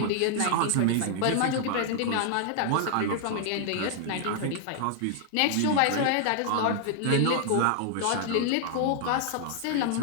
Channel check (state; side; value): different; both; correlation -0.01